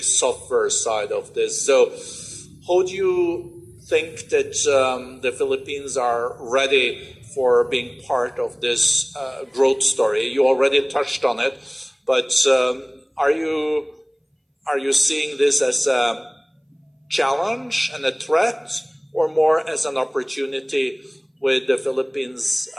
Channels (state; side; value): identical; both; correlation 1.00